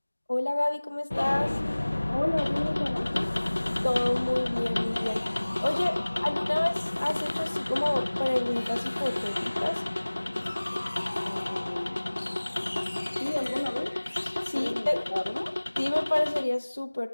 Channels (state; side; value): inverted; both; correlation -1.00